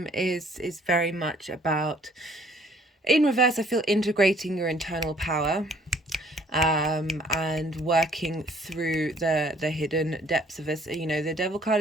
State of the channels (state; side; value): normal; both; correlation 0.59